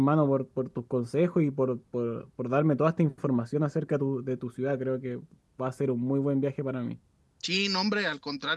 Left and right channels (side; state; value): both; identical; correlation 1.00